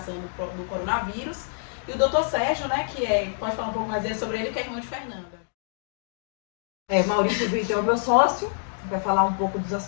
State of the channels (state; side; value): silent; right; digital silence